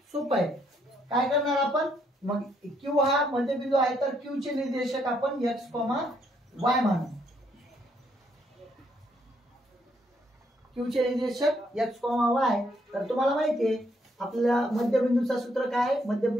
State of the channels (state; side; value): normal; both; correlation 0.72